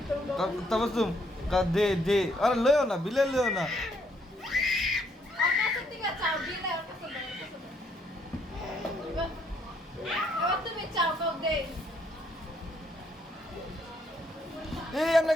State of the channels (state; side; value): normal; both; correlation 0.70